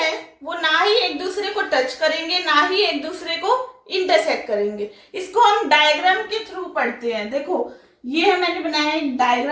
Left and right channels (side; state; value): both; identical; correlation 1.00